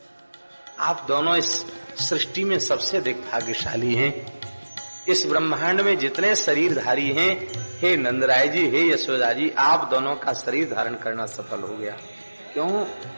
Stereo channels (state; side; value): inverted; both; correlation -1.00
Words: आप दोनों इस सृष्टि में सबसे अधिक भाग्यशाली हैं। इस ब्रह्मांड में जितने शरीरधारी हैं, हे नंदराय जी, हे यशोदा जी, आप दोनों का शरीर धारण करना सफल हो गया। क्यों?